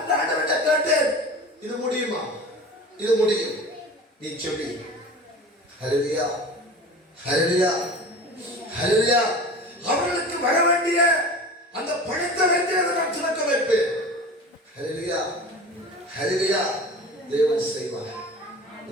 ஆண்டவர்கிட்ட கேட்டேன், இது முடியுமா? இது முடியும், நீ சொல்லி. ஹல்லேலூயா. ஹல்லேலூயா. ஹல்லேலூயா. அவர்களுக்கு வர வேண்டிய அந்த பணத்தை வைத்து அதை நான் திறக்க வைப்பேன். ஹல்லேலூயா. ஹல்லேலூயா. தேவன் செய்வார்.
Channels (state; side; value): normal; both; correlation 0.36